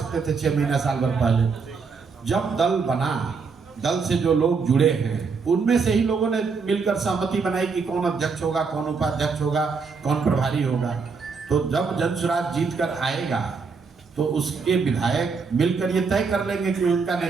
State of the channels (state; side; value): quieter; left; 5.1 dB